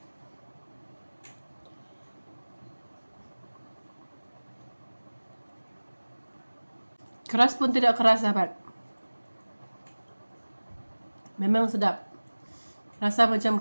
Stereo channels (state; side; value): inverted; both; correlation -1.00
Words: Keras pun tidak keras sahabat. Memang sedap. Rasa macam